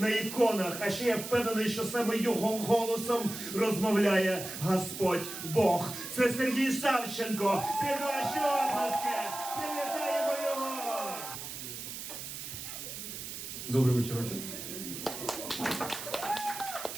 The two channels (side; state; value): right; noise; hiss, 8 dB below the sound